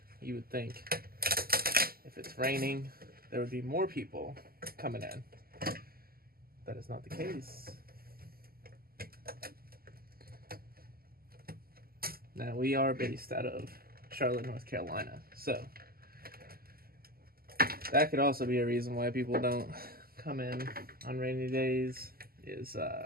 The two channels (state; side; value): late; left; 0.43 ms